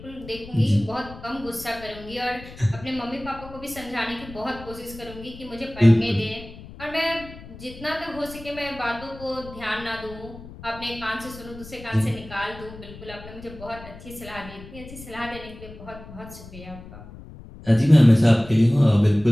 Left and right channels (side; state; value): left; noise; rumble, 16 dB below the sound